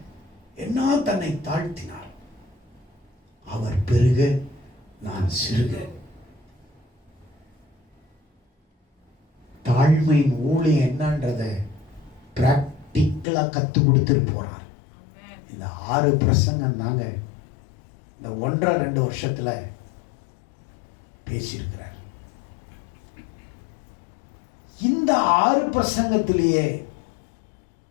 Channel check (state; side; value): drops out; right; at 13.2 s